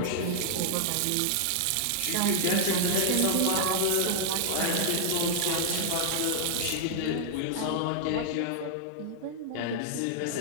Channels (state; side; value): different; both; correlation -0.01